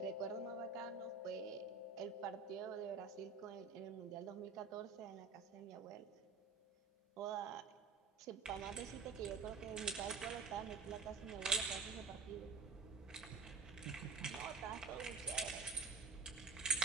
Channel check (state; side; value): quieter; left; 4.6 dB